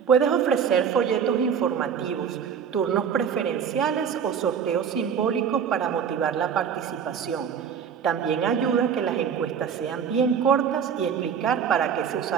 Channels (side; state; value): left; quieter; 7.4 dB